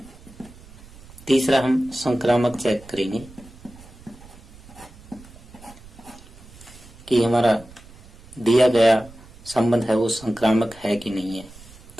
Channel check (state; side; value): noise; right; rumble, 21 dB below the sound